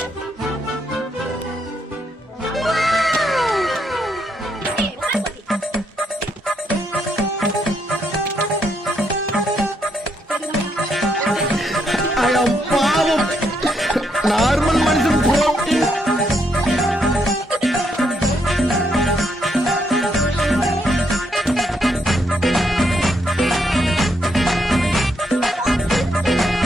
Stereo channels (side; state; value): both; normal; correlation 0.76